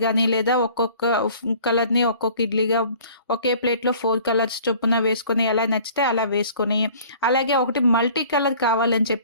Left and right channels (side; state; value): both; inverted; correlation -0.50